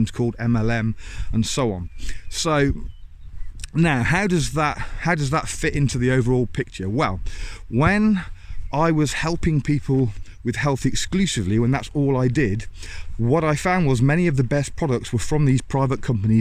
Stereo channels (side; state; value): both; identical; correlation 1.00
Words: called MLM, and so on. So now how does that fit into the overall picture? Well, when I was helping people with health exclusively, when that's all I did, what I found was many of the best products were from these private